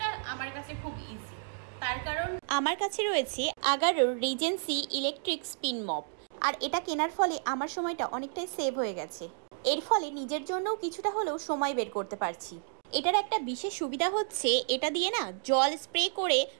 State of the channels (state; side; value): silent; left; digital silence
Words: আমার কাছে খুব ইজি, তার কারণ আমার কাছে রয়েছে আগারোর রিজেন্সি ইলেকট্রিক স্পিন মপ। আর এটা কেনার ফলে আমার সময়টা অনেকটাই সেভ হয়ে গেছে। এর ফলে নিজের জন্যও কিছুটা হলেও সময় বের করতে পারছি। এটার একটা বিশেষ সুবিধা হচ্ছে এটা দিয়ে না জল স্প্রে করে